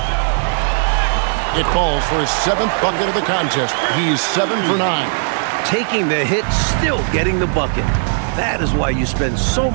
It falls for his 7th bucket of the contest. He's 7 for 9. Taking the hit, still getting the bucket. That is why you spend so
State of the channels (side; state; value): left; silent; digital silence